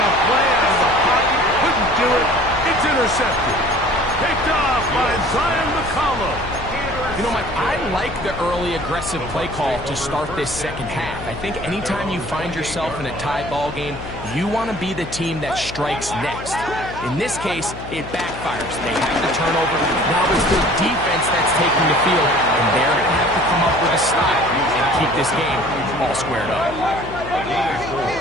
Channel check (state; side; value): noise; left; hum, 12 dB below the sound